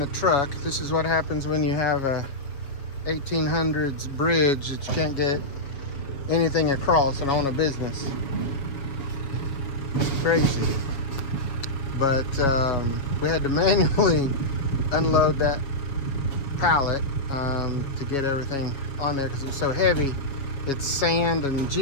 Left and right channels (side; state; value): right; late; 7.3 ms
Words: truck. This is what happens when you have a 1800s bridge that you can't get anything across and own a business. It's crazy. But we had to manually unload that pallet to get everything on there because it was so heavy. It's sand and